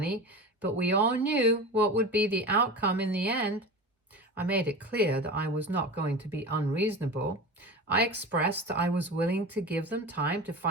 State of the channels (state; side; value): normal; both; correlation 0.29